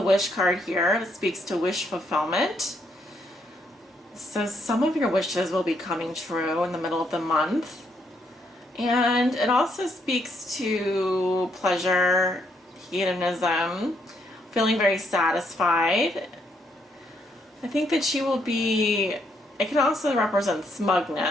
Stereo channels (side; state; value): both; normal; correlation 0.74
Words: Wish card here. It speaks to wish fulfillment. So some of your wishes will be coming true in the middle of the month. And it also speaks to pleasure, hedonism, feeling very satisfied. I think that you will be, it can also represent